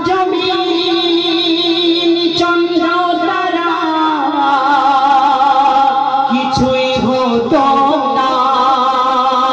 জমিন চন্দ্র তারা কিছুই হতো না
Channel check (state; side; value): identical; both; correlation 1.00